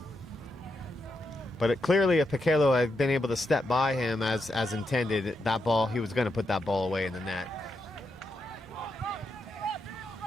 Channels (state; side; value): normal; both; correlation 0.83